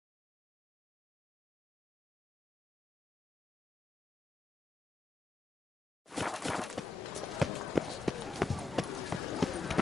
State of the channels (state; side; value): quieter; right; 3.7 dB